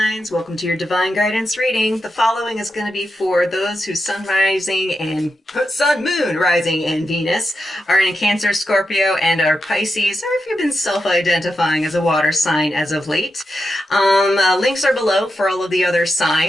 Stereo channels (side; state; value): both; normal; correlation 0.88